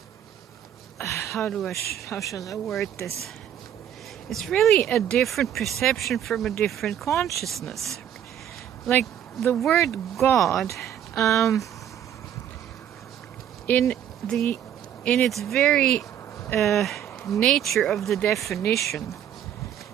shall I word this? It's really a different perception from a different consciousness. Like the word God, in its very nature of the definition,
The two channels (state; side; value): quieter; left; 10.1 dB